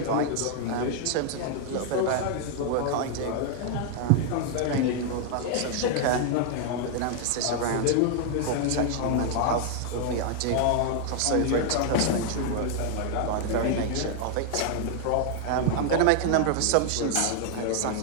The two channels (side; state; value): both; different; correlation 0.00